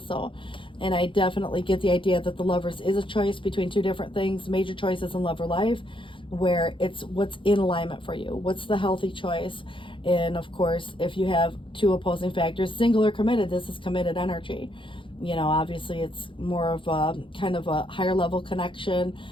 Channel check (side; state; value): right; late; 0.25 ms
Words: And I definitely get the idea that the Lovers is a choice between two different things, major choices in love or life, where it's what's in alignment for you. What's the healthy choice? And of course, if you have two opposing factors, single or committed, this is committed energy. You know, obviously it's more of a kind of a higher level connection,